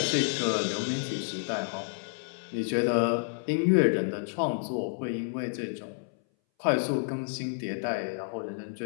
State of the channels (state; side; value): silent; right; 58 dB below the other